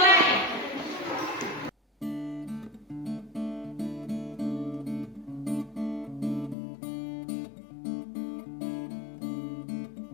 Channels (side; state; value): right; drops out; at 6.6 s